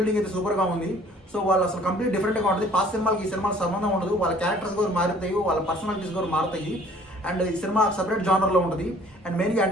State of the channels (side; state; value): both; normal; correlation 0.55